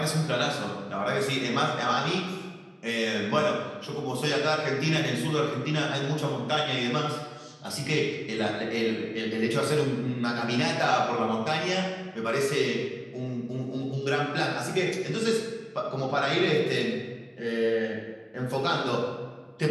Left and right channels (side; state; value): both; identical; correlation 1.00